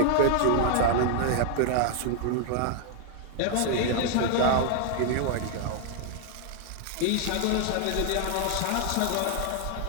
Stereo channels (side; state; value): both; different; correlation 0.00